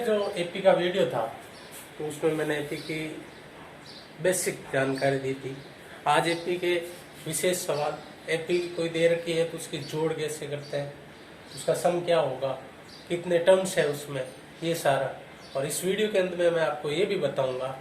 जो एपी का वीडियो था तो उसमें मैंने एपी की बेसिक जानकारी दी थी। आज एपी के विशेष सवाल, एपी कोई दे रखी है तो उसकी जोड़ कैसे करते हैं, उसका सम क्या होगा, कितने टर्म्स है उसमें, ये सारा। और इस वीडियो के अंत में मैं आपको ये भी बताऊंगा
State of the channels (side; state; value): both; identical; correlation 1.00